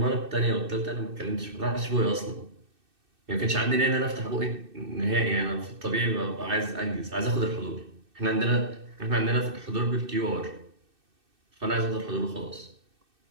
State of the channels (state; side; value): late; left; 2.6 ms